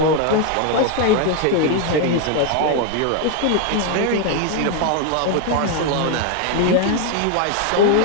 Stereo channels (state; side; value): different; both; correlation 0.01